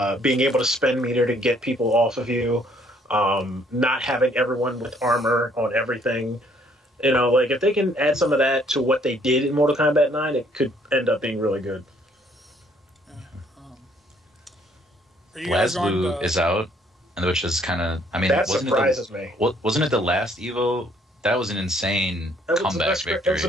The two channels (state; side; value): normal; both; correlation 0.64